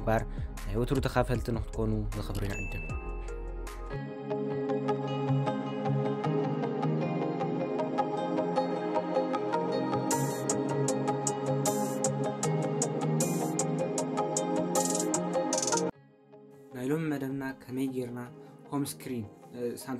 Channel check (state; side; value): identical; both; correlation 1.00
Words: يوترو تخافلت نختكونوا الخبرين عندنا نايلون مدمنا كميجرنا هوم سكرين